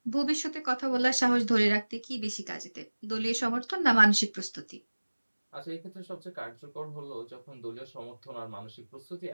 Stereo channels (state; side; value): inverted; both; correlation -1.00